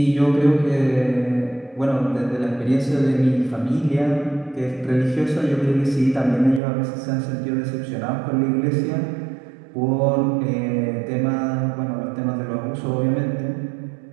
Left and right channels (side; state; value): left; drops out; at 6.6 s